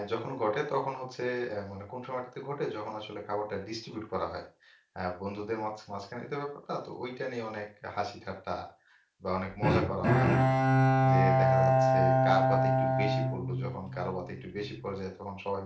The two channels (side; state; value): both; identical; correlation 1.00